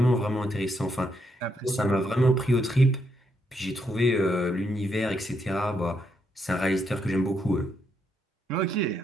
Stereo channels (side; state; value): both; normal; correlation 0.77